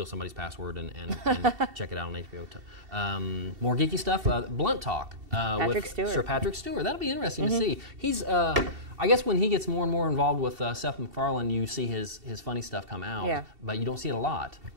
somebody's password and check it out on HBO. More geeky stuff. Blunt Talk with Stewart. Sir Patrick Stewart. That'll be interesting to see. He's I guess when he gets more and more involved with Seth MacFarlane, you see his funny stuff come out. Yeah. But you don't see it a lot.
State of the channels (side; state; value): left; late; 2.7 ms